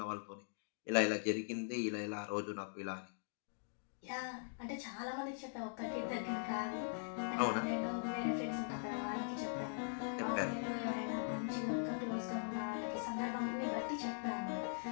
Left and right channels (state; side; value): silent; right; digital silence